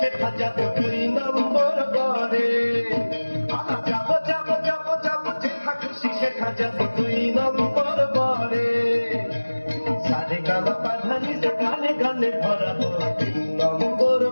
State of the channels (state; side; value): inverted; both; correlation -1.00